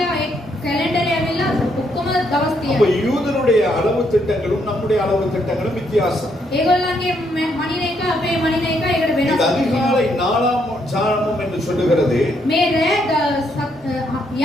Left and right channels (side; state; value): both; normal; correlation 0.74